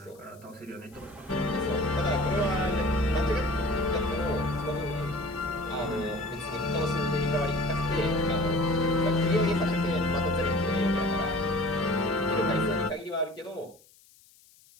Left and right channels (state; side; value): noise; left; hiss, 28 dB below the sound